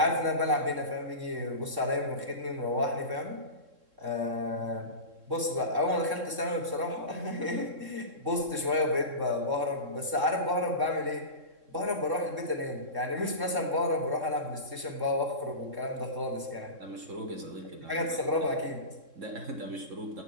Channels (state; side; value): late; left; 3.7 ms